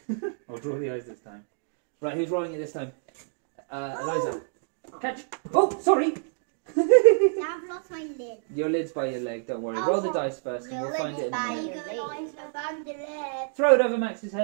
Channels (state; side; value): silent; left; digital silence